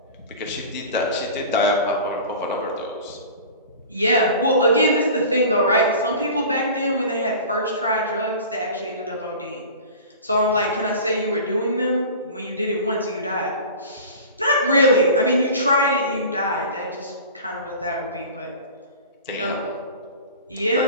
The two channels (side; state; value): both; inverted; correlation -0.38